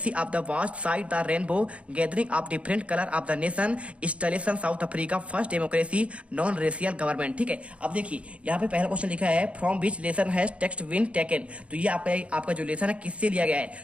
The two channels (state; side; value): late; left; 0.062 ms